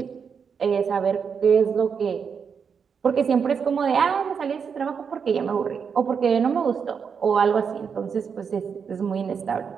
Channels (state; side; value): quieter; left; 6.5 dB